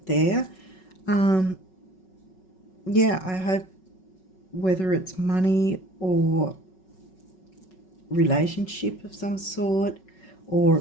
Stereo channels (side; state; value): right; late; 5.4 ms